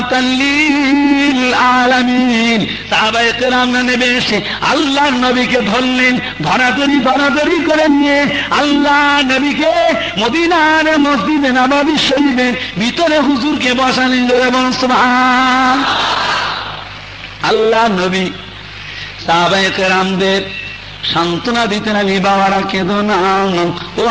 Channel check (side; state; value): both; identical; correlation 1.00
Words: লিল আলামিন। সাহাবায়ে কেরামরা নেমে এসে আল্লাহর নবীকে ধরলেন, ধরাধরি করে নিয়ে আল্লাহ নবীকে মদিনার মসজিদে নববী শরীফের ভিতরে হুজুরকে বসালেন। এবং সুবহান। আল্লাহ নবী সাহাবায়ে কেরামদের সান্ত্বনা দিতেন, আমি বাবারা কেঁদো না, ও